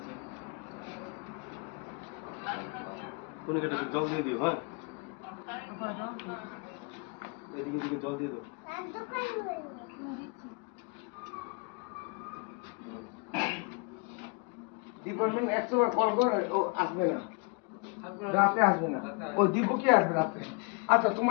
কোন কেটে জল দিয়ে দিও হ্যাঁ এদিকে জল দিয়ে দাও ডিপার্টমেন্ট 100 বার কল করে ও আসবে না রাতে আসবে না ও দীপু কি আসবে রাতে আচ্ছা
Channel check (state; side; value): quieter; right; 33.0 dB